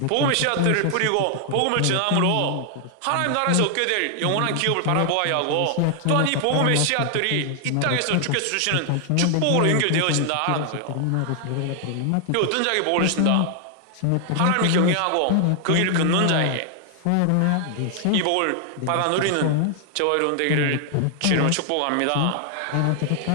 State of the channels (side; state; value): both; different; correlation 0.00